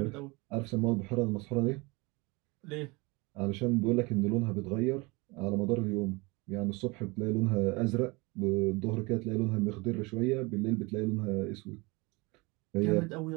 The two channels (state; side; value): quieter; left; 25.8 dB